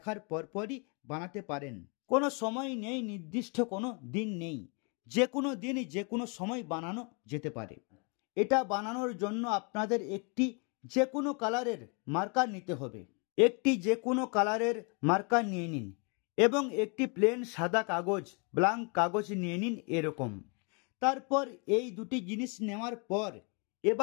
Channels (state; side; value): quieter; right; 34.4 dB